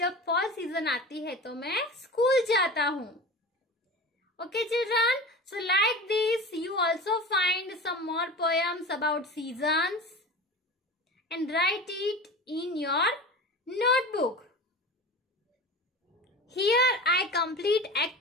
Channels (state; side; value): normal; both; correlation 0.33